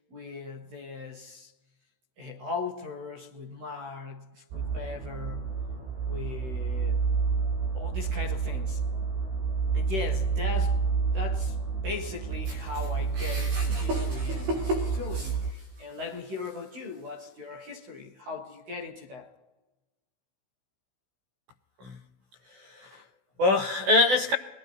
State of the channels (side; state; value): left; late; 16 ms